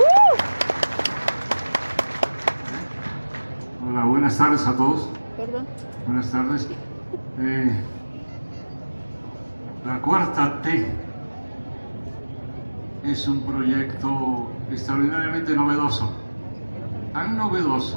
Hola, buenas tardes a todos. Perdón. Buenas tardes. La Cuarta T es un proyecto extraordinariamente novedoso, tan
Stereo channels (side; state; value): both; inverted; correlation -1.00